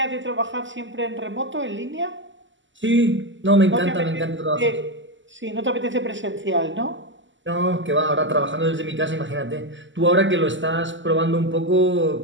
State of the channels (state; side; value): late; left; 0.54 ms